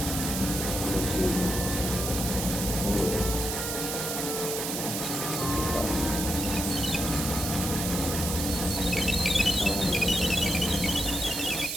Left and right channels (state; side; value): noise; right; hiss, 3 dB below the sound